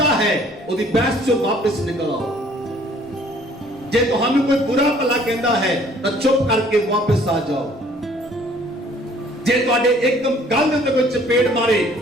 है ओदी बहस चों वापस निकल आओ। जे तुहानू कोई बुरा भला कहंदा है तां चुप करके वापस आ जाओ। जे तुहाडे एकदम गल दे कोई चपेट मारे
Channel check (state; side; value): normal; both; correlation 0.57